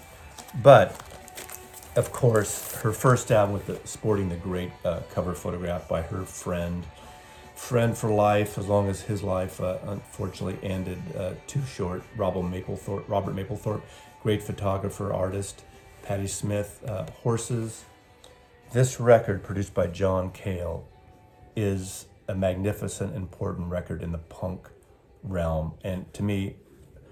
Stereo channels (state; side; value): identical; both; correlation 1.00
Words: But, of course, her first album sporting the great cover photograph by her friend for life, as long as his life unfortunately ended too short. Robert Mapplethorpe, great photographer, artist. Patti Smith, Horses. This record, produced by John Cale, is a magnificent, important record in the punk realm, and to me,